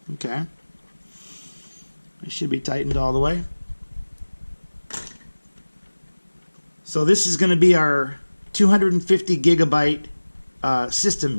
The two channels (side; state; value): both; inverted; correlation -1.00